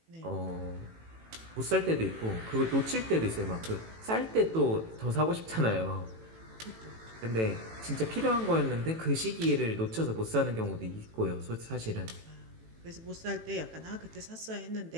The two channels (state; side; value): late; left; 18 ms